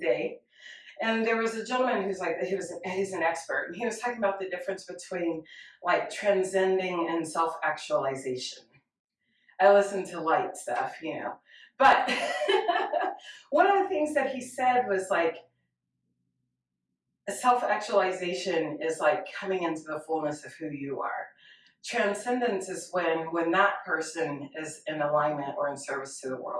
and there was a gentleman who's like he's an expert, and he was talking about the difference between like transcending and self-actualization. I listen to light stuff, but one of the things that he said was like self-actualization is like coming into the fullness of who you are. Transcendence is when that person is in alignment or in service to the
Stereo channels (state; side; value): identical; both; correlation 1.00